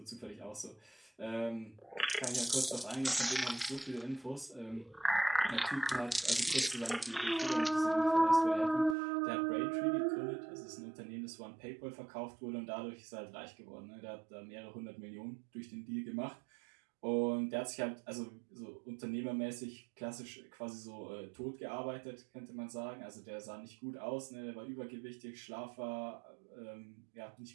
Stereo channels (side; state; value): left; drops out; at 9.0 s